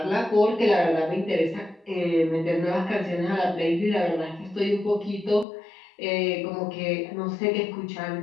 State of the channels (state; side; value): drops out; right; at 5.5 s